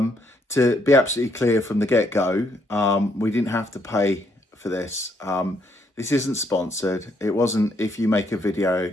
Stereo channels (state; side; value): normal; both; correlation 0.72